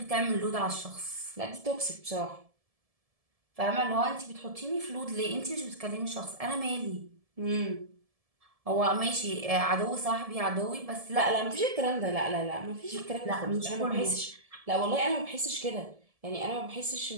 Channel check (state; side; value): late; left; 1.7 ms